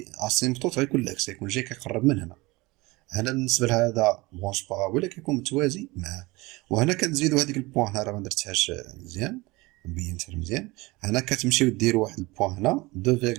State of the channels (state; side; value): quieter; left; 22.5 dB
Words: اسيمبتوت غيكون العكس، يكون جاي كيقرب من هنا. هنا بالنسبه لهذا برونش بارابوليك كيكون متوازي معاه. وهنا كنزيدو هذيك البوان، هنا راه ما درتهاش مزيان، مبينتها مزيان. هنا كتمشيو ديروا واحد البوان هنا